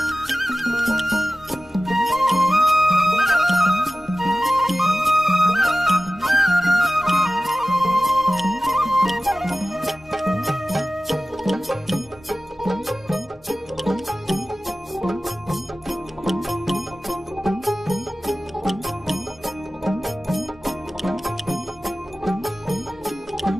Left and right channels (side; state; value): both; normal; correlation 0.95